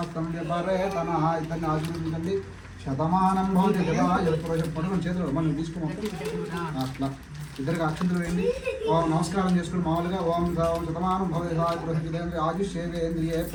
ఆశీర్వదించండి. శతమానం భవతి పట్టుకుని చేతులు మనం తీసుకున్నాం అట్లా ఇద్దరికి అక్షంతలు వేయండి. ఓం నమస్కారం చేసుకుని మామూలుగా ఓం శతమానం భవతి ఆయుష్యేంద్రియే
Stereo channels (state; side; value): identical; both; correlation 1.00